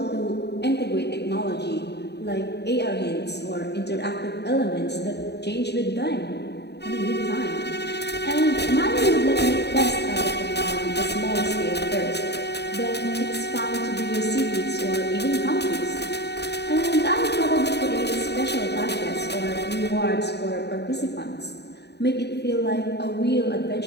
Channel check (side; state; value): right; late; 0.49 ms